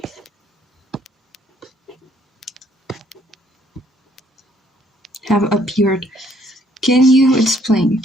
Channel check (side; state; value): both; normal; correlation 0.65